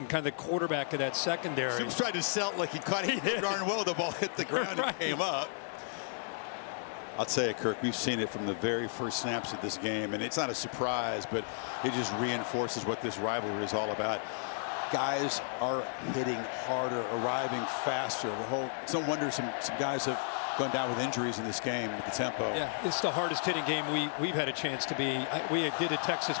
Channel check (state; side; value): silent; right; 56 dB below the other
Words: kind of the quarterback of that secondary. Stoops tried to sell it like he caught it darn well. The ball hit the ground and came up. I'll tell you, Kirk, we've seen it from the very first snaps of this game, and it's not a surprise, but it just reinforces what this rivalry is all about. Guys are hitting harder, arriving faster. It's no wonder some guys have gone down with injuries in this game with the tempo. Yeah, it's the hardest hitting game we've had a chance to be. We did a